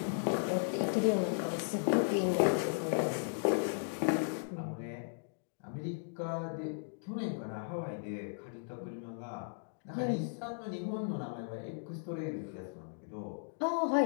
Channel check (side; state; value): right; silent; digital silence